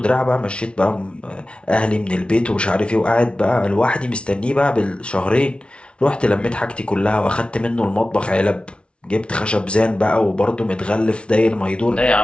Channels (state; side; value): late; right; 0.059 ms